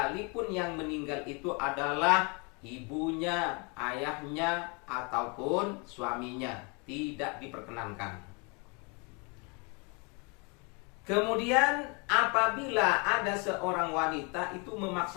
yang meninggal itu adalah ibunya, ayahnya, ataupun suaminya, tidak diperkenankan. Kemudian apabila ada seorang wanita itu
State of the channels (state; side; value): quieter; right; 32.3 dB